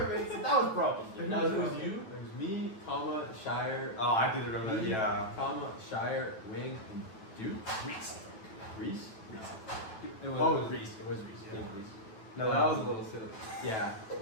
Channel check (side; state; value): right; late; 9.1 ms